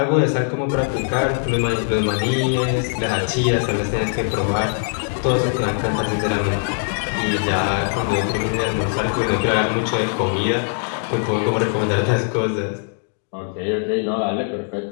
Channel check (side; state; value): right; silent; 60 dB below the other